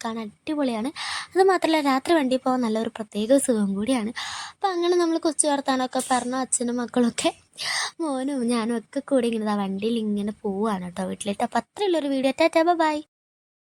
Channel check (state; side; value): identical; both; correlation 1.00